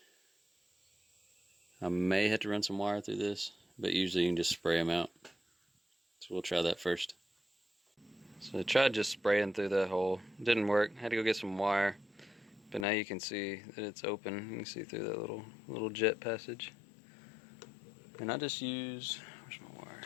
I may have to run some wire through this, but usually you can just spray them out. So we'll try that first. So I tried just spraying through that hole. It didn't work. I had to go get some wire. But now you can see that it's open. You can see through that little jet passage. And I just use, where's my wire?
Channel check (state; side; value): drops out; right; at 12.9 s